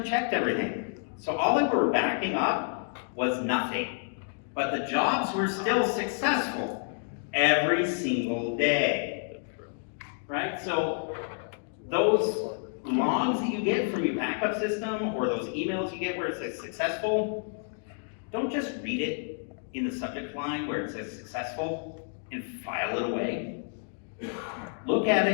everything. So all they were backing up was nothing. But the jobs were still successful every single day. Right? So those logs that you get from your backup system or those emails you get where it says successful, don't just read it in the subject line where it says successful and file it away. Look at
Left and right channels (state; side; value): silent; right; 58 dB below the other